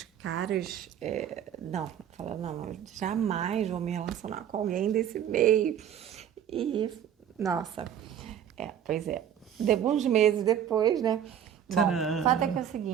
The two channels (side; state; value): left; quieter; 9.6 dB